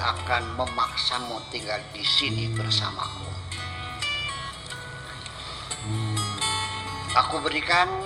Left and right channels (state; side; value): identical; both; correlation 1.00